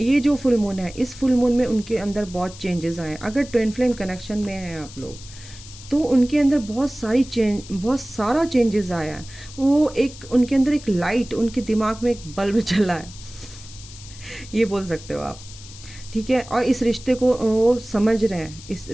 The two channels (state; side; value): noise; left; hiss, 17 dB below the sound